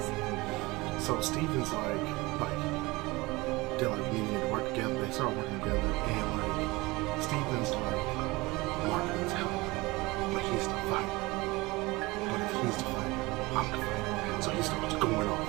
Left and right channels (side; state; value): left; quieter; 22.5 dB